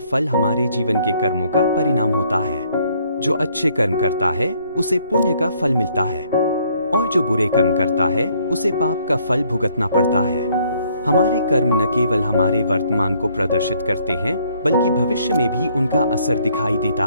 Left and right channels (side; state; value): both; inverted; correlation -0.65